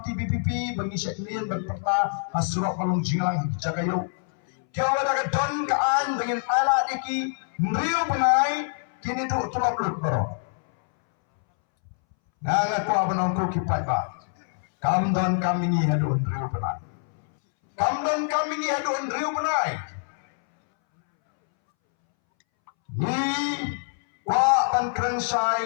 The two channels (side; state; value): right; silent; 61 dB below the other